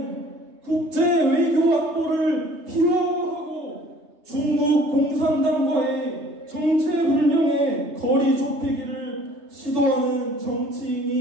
국제 외교 안보를 희화화하고 중국 공산당과의 정체불명의 거리 좁히기를 지도하는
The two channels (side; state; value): left; late; 3.3 ms